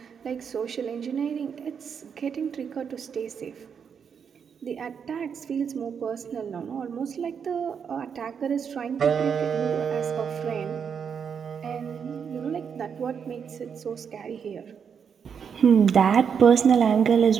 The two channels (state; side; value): quieter; left; 7.0 dB